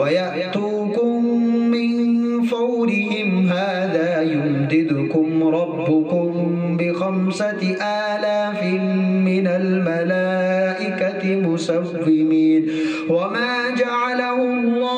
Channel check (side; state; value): both; identical; correlation 1.00